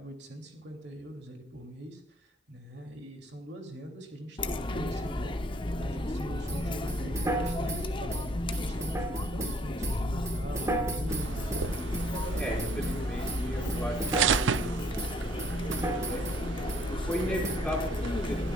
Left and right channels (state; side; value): normal; both; correlation 0.62